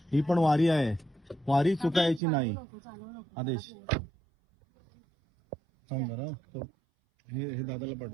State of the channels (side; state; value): left; drops out; at 2.2 s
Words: ही पण वारी आहे, वारी चुकायची नाही. आदेश सांग बरं, हे दादाला